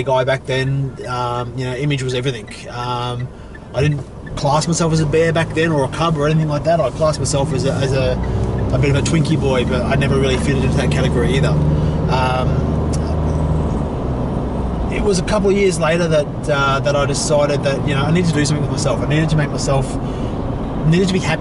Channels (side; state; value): both; identical; correlation 1.00